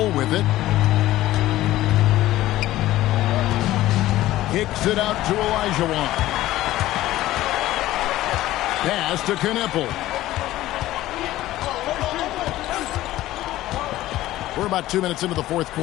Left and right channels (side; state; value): right; quieter; 15.4 dB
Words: with it. Kicks it out to Olajuwon. Pass to Knipple. We're about 2 minutes into the fourth